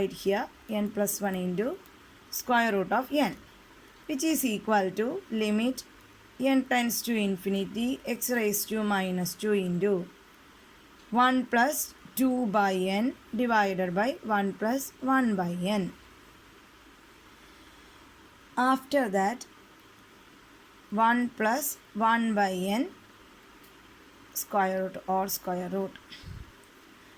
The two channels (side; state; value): both; identical; correlation 1.00